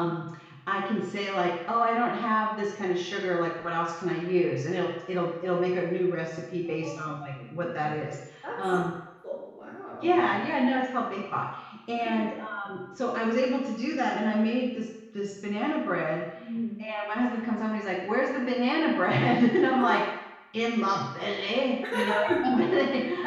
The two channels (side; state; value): both; identical; correlation 1.00